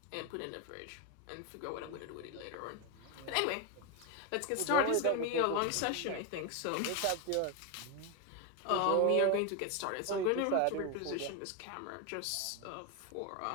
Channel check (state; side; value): different; both; correlation 0.02